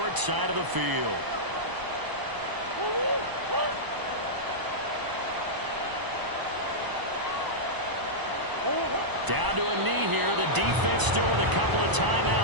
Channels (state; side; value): late; left; 1.0 ms